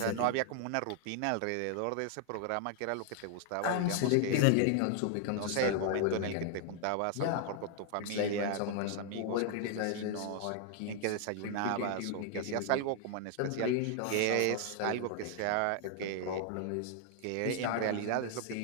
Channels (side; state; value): both; different; correlation 0.00